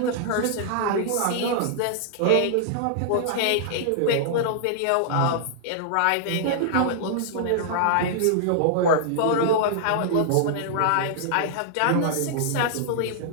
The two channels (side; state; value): both; different; correlation -0.01